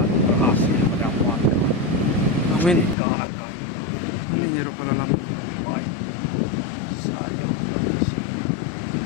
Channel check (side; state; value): right; drops out; at 3.0 s